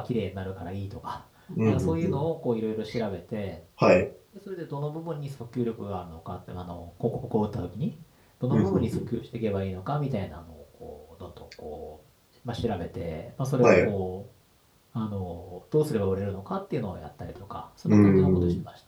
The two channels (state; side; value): identical; both; correlation 1.00